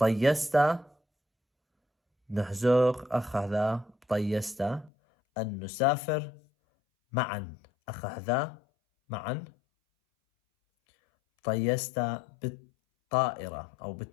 نحزوق أخذ بطيستا أن نسافر معا أخذ معا طيستا بالطائرة أو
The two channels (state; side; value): drops out; right; at 4.9 s